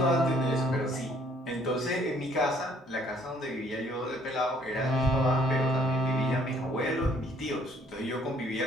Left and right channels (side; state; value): both; normal; correlation 0.62